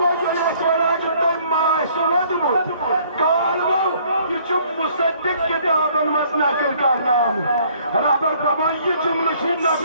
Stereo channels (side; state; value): both; inverted; correlation -0.60